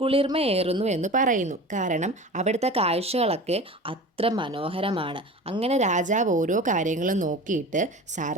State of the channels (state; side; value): normal; both; correlation 0.35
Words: കുളിർമയേറുന്നു എന്ന് പറയുന്നു. കാരണം അവിടുത്തെ കാഴ്ചകളൊക്കെ അത്ര മനോഹരമാണ്. അങ്ങനെ രാജാവ് ഓരോ കാര്യങ്ങളും നോക്കിയിട്ട്